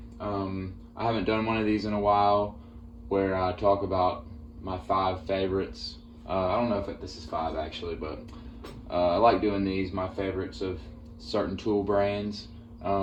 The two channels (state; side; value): identical; both; correlation 1.00